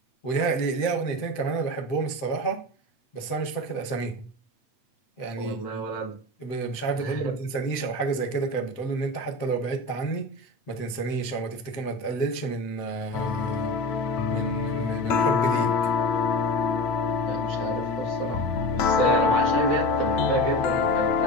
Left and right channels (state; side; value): late; right; 7.7 ms